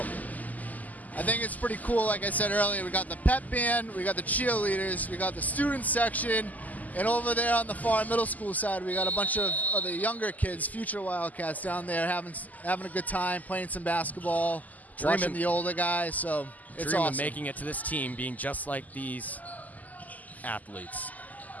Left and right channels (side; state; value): right; late; 0.079 ms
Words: I think it's pretty cool. Like I said earlier, we got the pep band, we got the cheerleaders, we got the student section, and over there on the far middle school side, we got a bunch of the younger kids, future Wildcats down there having a good time, playing some basketball, watching the older guys. So it's awesome. Making it to this team, being just like these athletes.